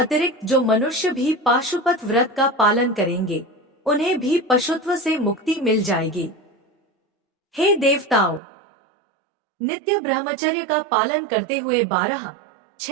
जो मनुष्य भी पाशुपत व्रत का पालन करेंगे, उन्हें भी पशुत्व से मुक्ति मिल जाएगी। हे देवताओं, नित्य ब्रह्मचर्य का पालन करते हुए 12,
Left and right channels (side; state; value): left; drops out; at 8.4 s